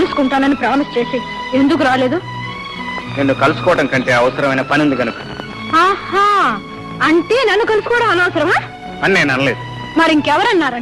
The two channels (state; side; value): identical; both; correlation 1.00